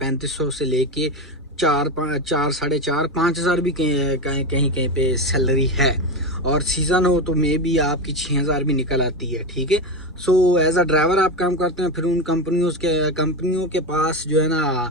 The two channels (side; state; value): both; normal; correlation 0.16